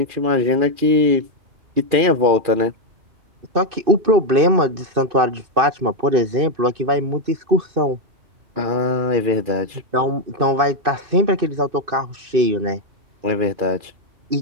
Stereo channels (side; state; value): left; late; 2.6 ms